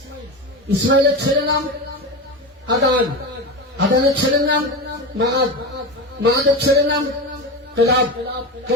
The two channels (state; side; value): normal; both; correlation 0.22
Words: ইসমাইলের ছেলের নাম আদান, আদানের ছেলের নাম মাআদ, মাআদের ছেলের নাম কেলাব,